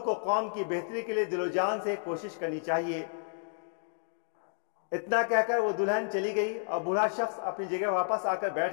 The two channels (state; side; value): silent; right; digital silence